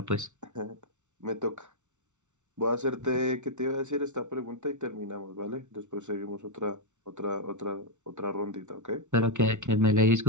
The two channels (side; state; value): left; late; 0.84 ms